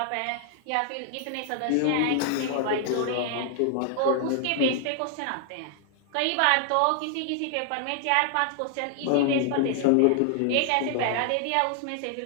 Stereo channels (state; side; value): different; both; correlation 0.00